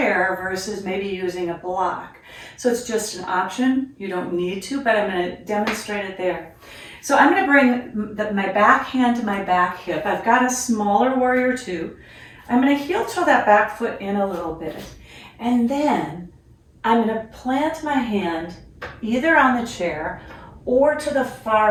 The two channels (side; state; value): both; identical; correlation 1.00